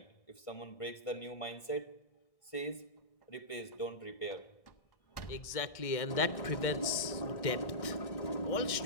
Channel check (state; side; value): late; right; 1.6 ms